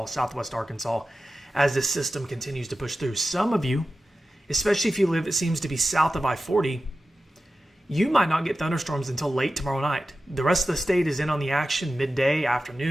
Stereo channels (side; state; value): both; normal; correlation 0.93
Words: southwest Arkansas, as this system continues to push through. Some of you, especially if you live, it seems to be south of I-40, you might not get thunderstorms until late tomorrow night. The rest of the state is in on the action midday,